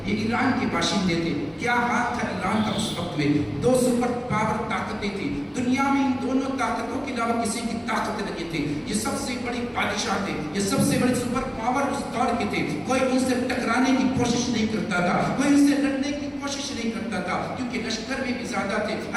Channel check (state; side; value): identical; both; correlation 1.00